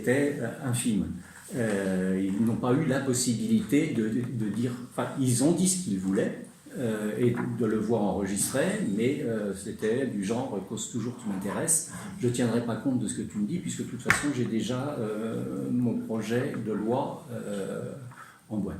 infime. Ils n'ont pas eu la possibilité de dire... Enfin, ils ont dit ce qu'ils voulaient, et de le voir enregistré, mais c'était du genre « cause toujours tu m'intéresses ». Je ne tiendrai pas compte de ce que tu me dis, puisque de toute façon, j'ai déjà mon projet de loi en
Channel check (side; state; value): both; identical; correlation 1.00